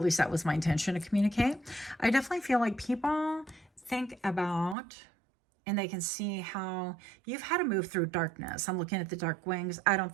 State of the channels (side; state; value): left; drops out; at 4.8 s